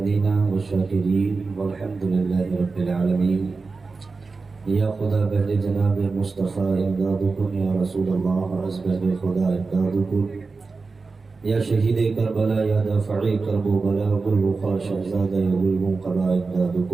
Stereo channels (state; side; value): quieter; left; 4.2 dB